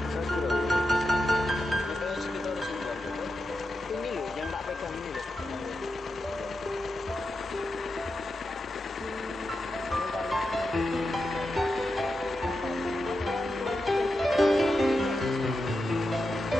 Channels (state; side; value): normal; both; correlation 0.88